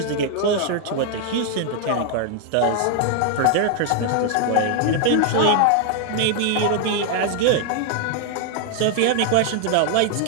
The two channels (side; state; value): both; different; correlation 0.00